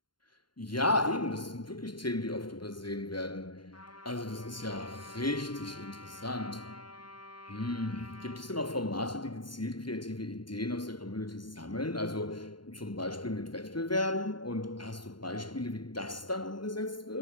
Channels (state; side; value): late; right; 0.72 ms